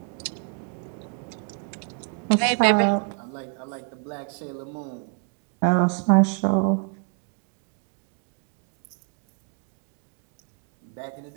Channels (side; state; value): left; quieter; 38.8 dB